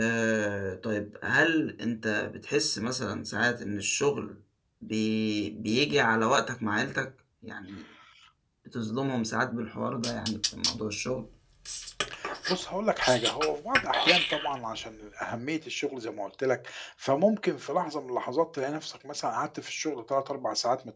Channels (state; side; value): identical; both; correlation 1.00